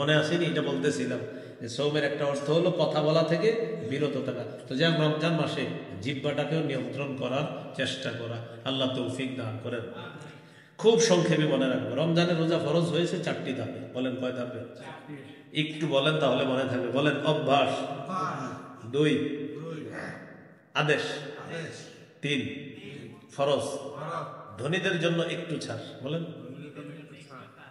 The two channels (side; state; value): both; identical; correlation 1.00